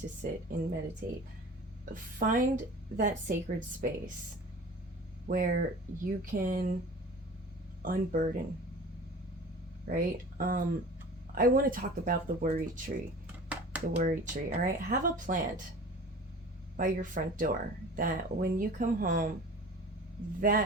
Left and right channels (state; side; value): normal; both; correlation 0.41